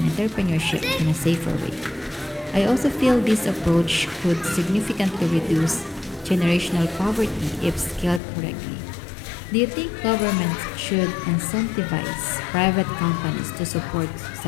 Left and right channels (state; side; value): drops out; right; at 8.2 s